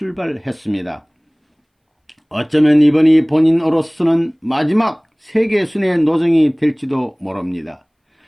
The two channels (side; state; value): both; identical; correlation 1.00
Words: 어쩌면 이번이 본인으로서는 마지막 세계 순회 노정이 될지도 모릅니다.